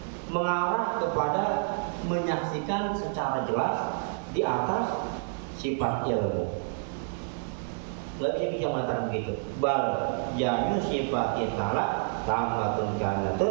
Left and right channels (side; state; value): left; silent; digital silence